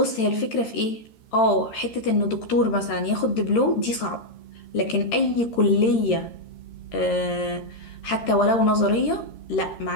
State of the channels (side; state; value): right; late; 13 ms